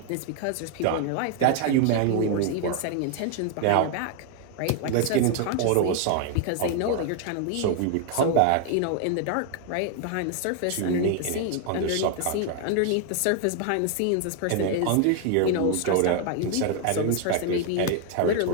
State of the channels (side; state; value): both; different; correlation 0.00